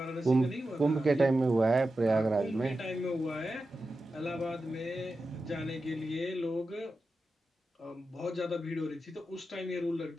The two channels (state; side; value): normal; both; correlation 0.91